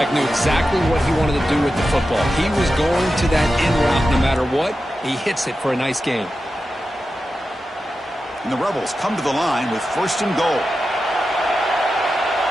knew exactly what he wanted to do with the football. He was going to that in route no matter what. He hits it for a nice gain. And the Rebels come to the line with first and goal.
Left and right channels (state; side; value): normal; both; correlation 0.91